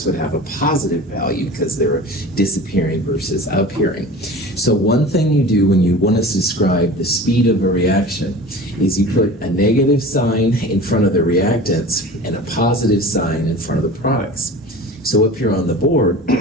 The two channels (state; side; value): normal; both; correlation 0.37